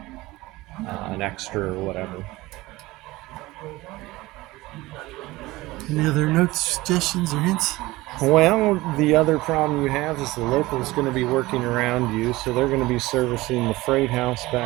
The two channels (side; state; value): left; quieter; 19.5 dB